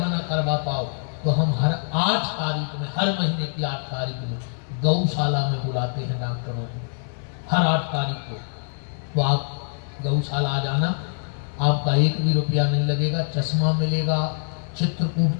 ना करवा पाओ तो हम हर 8 तारीख में, हर महीने की 8 तारीख में गौशाला में बुलाते हैं डॉक्टरों को, हर 8 तारीख को। तो आप गौशाला आ जाना, आपका 1 भी रुपया नहीं लगेगा, चश्मा मिलेगा,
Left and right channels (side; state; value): right; silent; 61 dB below the other